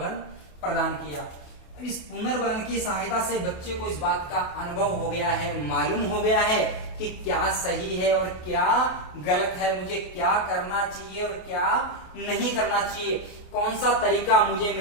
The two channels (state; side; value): late; right; 28 ms